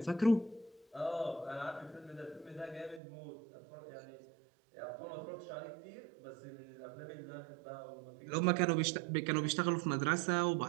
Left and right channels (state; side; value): drops out; left; at 3.0 s